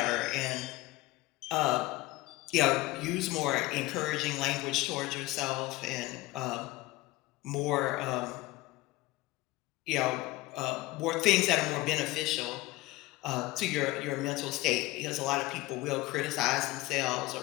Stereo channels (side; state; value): right; quieter; 19.1 dB